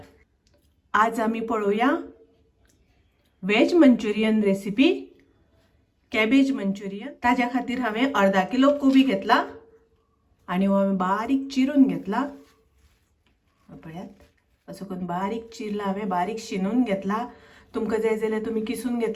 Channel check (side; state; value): both; identical; correlation 1.00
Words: आज आमी पळोवया veg Manchurian recipe, cabbage Manchurian. ताज्या खातीर हांवें अर्धा किलो कोबी घेतला आनी हो हांवें बारीक चिरून घेतला। पळयात असो करून बारीक चिरला, हांवें बारीक शिनून घेतला। तुमकां जाय जाल्यार तुमी किसून